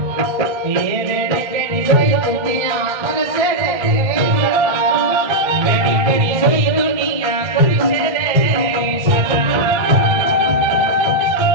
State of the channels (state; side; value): late; left; 1.3 ms